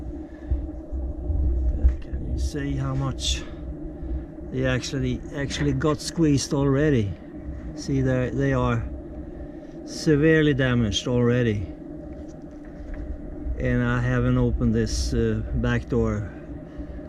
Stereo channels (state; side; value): identical; both; correlation 1.00